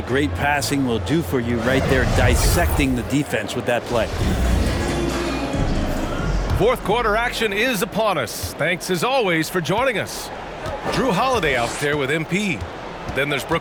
great passing will do for you right there, dissecting the defense with that play. Fourth quarter action is upon us. Thanks as always for joining us. Drew Holiday out there with MP. Then there's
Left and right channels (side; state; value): both; identical; correlation 1.00